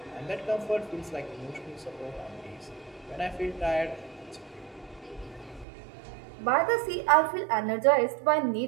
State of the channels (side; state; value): left; drops out; at 5.7 s